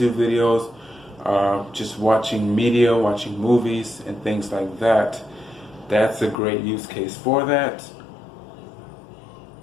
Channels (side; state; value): right; drops out; at 6.4 s